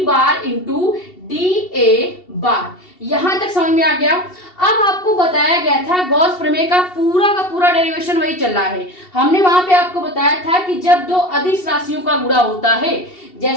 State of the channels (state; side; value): late; right; 2.7 ms